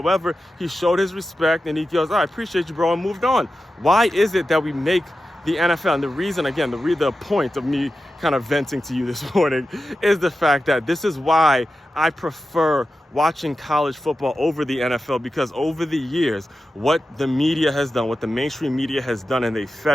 he showed his respect and he goes, I appreciate you, bro, and moved on. Why is it that we make the NFL, and the reason, again, the point of me kind of venting to you this morning is the fact that this is why I prefer watching college football over the NFL, because over the years, what the media has done, what the mainstream media has done, and they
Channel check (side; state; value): both; normal; correlation 0.92